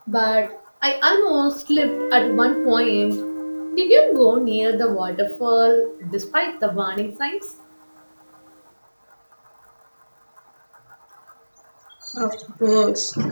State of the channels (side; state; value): both; inverted; correlation -1.00